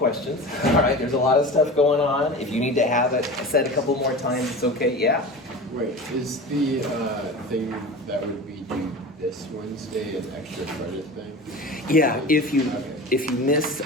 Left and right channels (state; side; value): normal; both; correlation 0.33